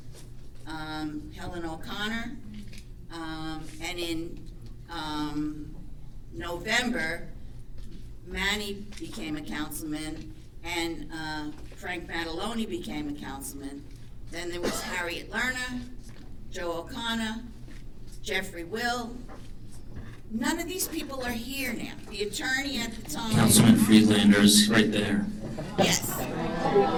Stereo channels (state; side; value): identical; both; correlation 1.00